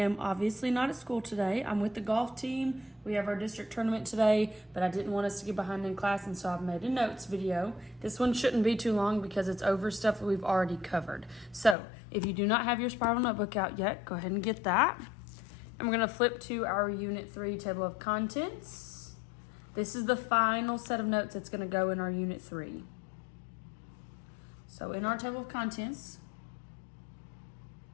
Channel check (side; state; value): right; drops out; at 11.8 s